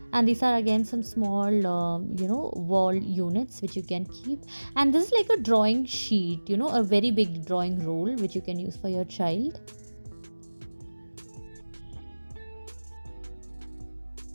And these are again some small wall units which you can keep. And this is like a drawing sheet, a very big drawing roll which you can use for your child.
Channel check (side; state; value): both; inverted; correlation -1.00